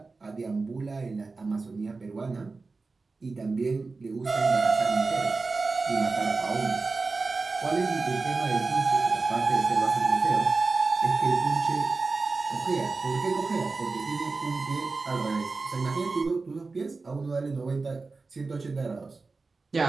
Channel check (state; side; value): quieter; left; 4.0 dB